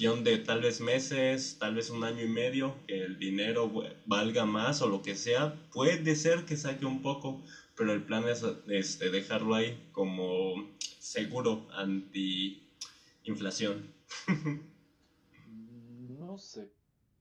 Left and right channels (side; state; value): both; identical; correlation 1.00